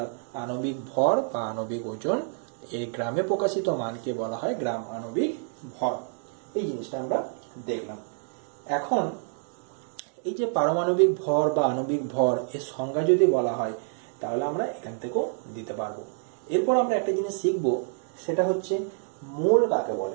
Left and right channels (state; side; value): silent; left; digital silence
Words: আণবিক ভর বা আণবিক ওজন, এই গ্রামে প্রকাশিত মানকে বলা হয় গ্রাম আণবিক ভর। এই জিনিসটা আমরা দেখলাম। এখন এই যে পারমাণবিক ভর বা আণবিক ভর, এর সংজ্ঞা যদি বলা হয় তাহলে আমরা এখান থেকেও দিতে পারবো। এরপর আমরা একটা জিনিস শিখবো, সেটা হচ্ছে মোল কাকে